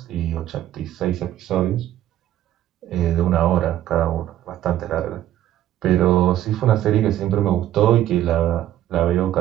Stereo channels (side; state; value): left; quieter; 12.6 dB